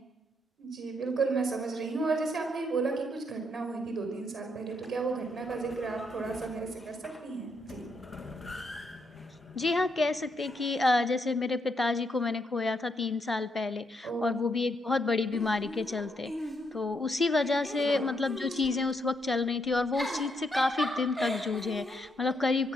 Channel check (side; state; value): both; normal; correlation 0.77